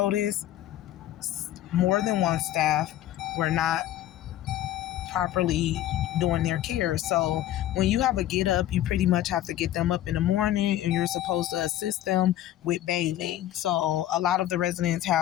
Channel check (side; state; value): right; quieter; 13.0 dB